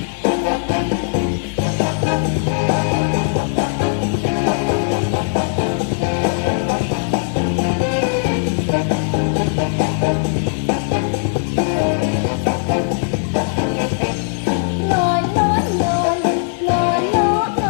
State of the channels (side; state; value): right; silent; digital silence